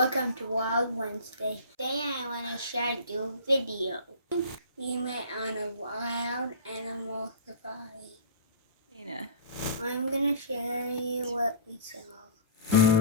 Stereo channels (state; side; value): inverted; both; correlation -0.38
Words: to Wild Wednesday. Today I want to share you a video. We met on a wild animal safari. I'm going to share you what we saw.